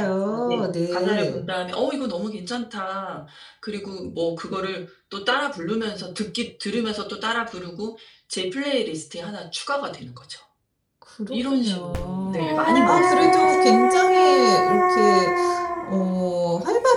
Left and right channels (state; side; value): identical; both; correlation 1.00